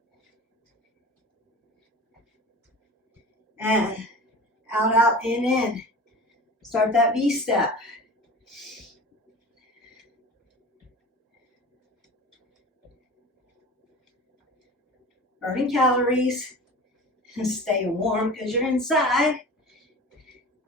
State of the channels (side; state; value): both; normal; correlation 0.37